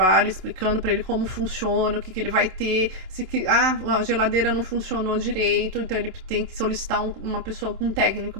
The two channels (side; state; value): left; late; 27 ms